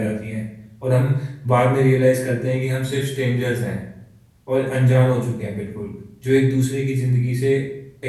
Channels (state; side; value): identical; both; correlation 1.00